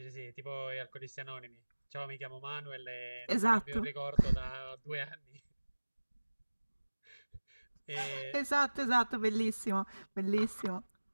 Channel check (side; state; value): both; inverted; correlation -1.00